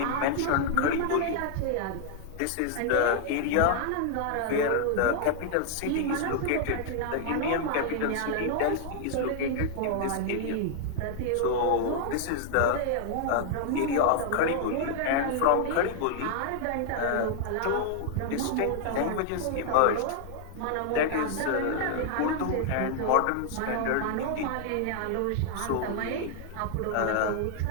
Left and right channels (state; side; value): different; both; correlation 0.00